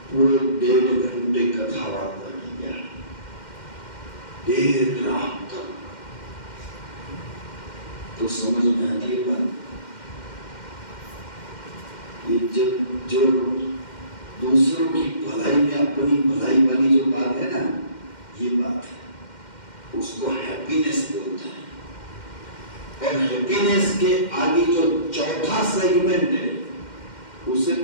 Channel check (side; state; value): right; late; 2.1 ms